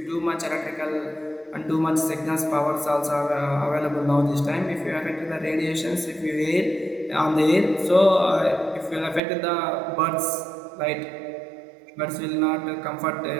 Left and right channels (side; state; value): left; drops out; at 9.2 s